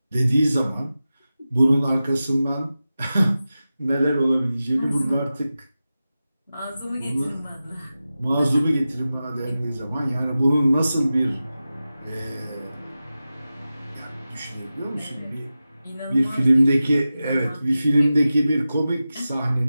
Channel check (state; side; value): inverted; both; correlation -0.94